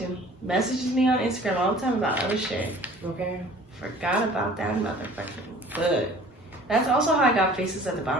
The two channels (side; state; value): both; normal; correlation 0.49